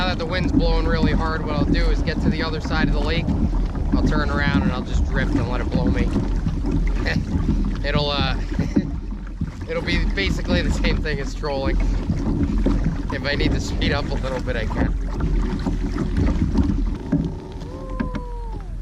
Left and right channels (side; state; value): both; identical; correlation 1.00